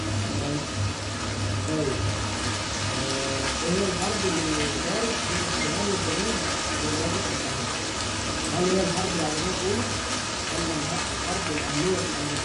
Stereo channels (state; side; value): identical; both; correlation 1.00